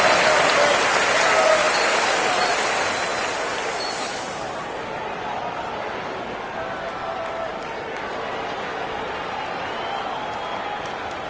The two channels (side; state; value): both; identical; correlation 1.00